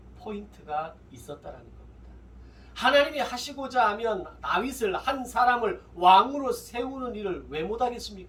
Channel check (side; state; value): both; identical; correlation 1.00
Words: 포인트가 있었다는 겁니다. 하나님이 하시고자 하면 다윗을, 한 사람을 왕으로 세우는 일을 왜